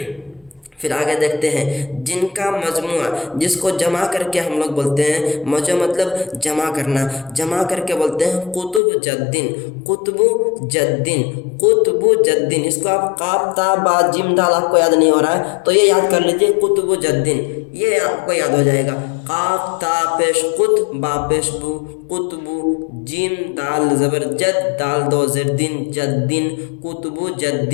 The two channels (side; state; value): right; drops out; at 8.8 s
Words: फिर आगे देखते हैं। जिनका मजमुआ, जिसको जमा करके हम लोग बोलते हैं, मजमुआ मतलब जमा करना, जमा करके बोलते हैं कुतुब जद्दीन। कुतुब जद्दीन, कुतुब जद्दीन। इसको आप काफ ता बा जिम दाल आपको याद नहीं हो रहा है तो ये याद कर लीजिए, कुतुब जद्दीन, ये आपको याद हो जाएगा। काफ ता पेश कुत, बा पेश बु, कुतबु, जिम दाल जबर जद, दाल दो ज़ेर दिन, जद्दीन, कुतुब